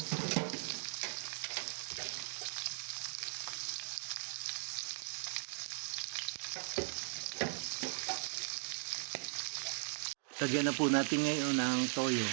Lagyan na po natin ngayon ng toyo.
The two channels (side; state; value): left; silent; digital silence